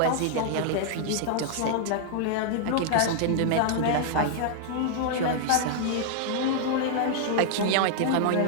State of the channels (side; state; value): both; different; correlation -0.01